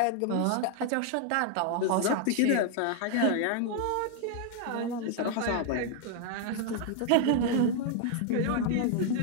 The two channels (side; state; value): both; different; correlation 0.00